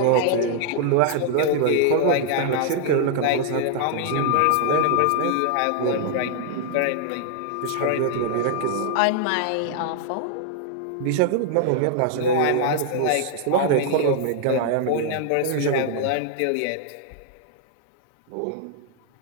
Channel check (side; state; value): both; different; correlation 0.00